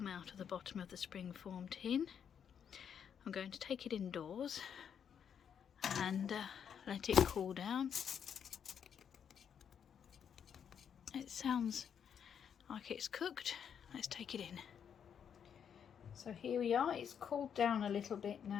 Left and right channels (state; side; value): quieter; right; 7.9 dB